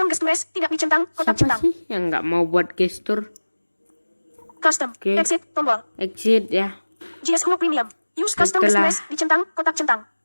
gestures. Tidak dicentang, kotak Siapa centang. sih yang nggak mau buat gestur? Custom. Oke. Exit, tombol. Exit ya. JS Home Premium. Use custom Setelah- gestures. Dicentang, kotak centang.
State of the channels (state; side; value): inverted; both; correlation -1.00